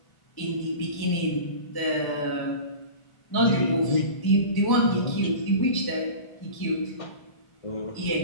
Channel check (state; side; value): late; right; 1.0 ms